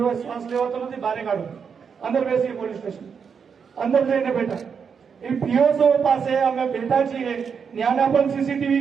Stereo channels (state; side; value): quieter; left; 6.4 dB